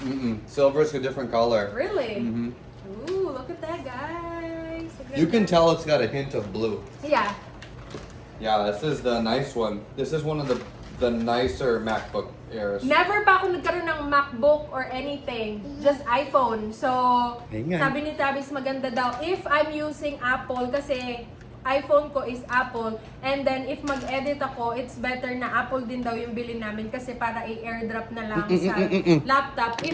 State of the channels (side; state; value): both; identical; correlation 1.00